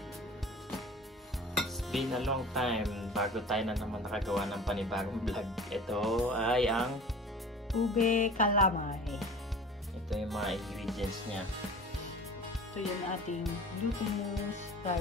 It's been a long time bago tayo na naman nakagawa ng panibagong vlog. Ito ay ang Ube calamay. ito yung mga ingredients niya. Ito yung ating glutinous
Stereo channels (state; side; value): normal; both; correlation 0.41